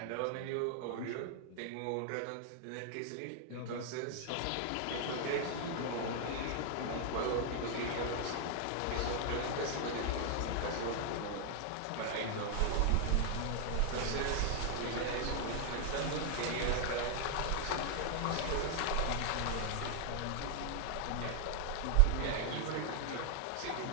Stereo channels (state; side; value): different; both; correlation 0.00